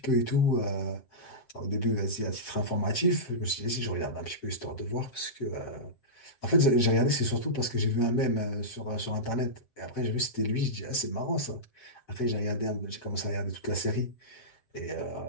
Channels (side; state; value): right; late; 7.6 ms